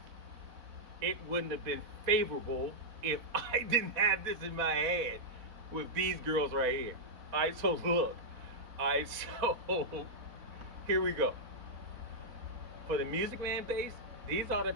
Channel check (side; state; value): left; late; 4.0 ms